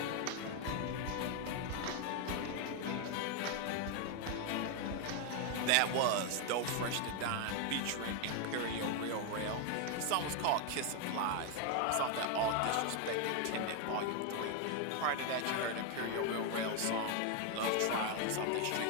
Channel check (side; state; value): both; different; correlation 0.01